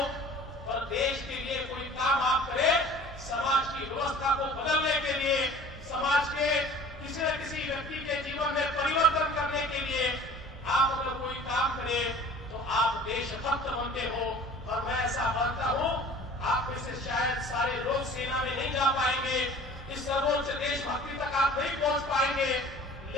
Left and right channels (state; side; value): normal; both; correlation 0.46